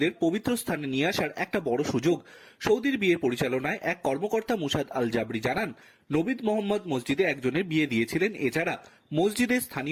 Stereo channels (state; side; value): identical; both; correlation 1.00